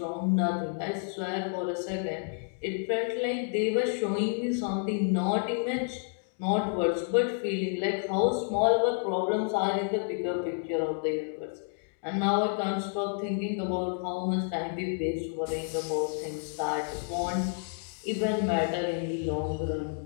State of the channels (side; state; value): right; silent; 58 dB below the other